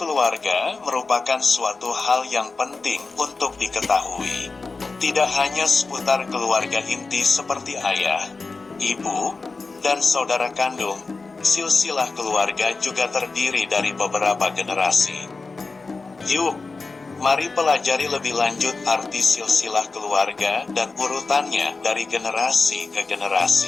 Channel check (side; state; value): right; quieter; 4.0 dB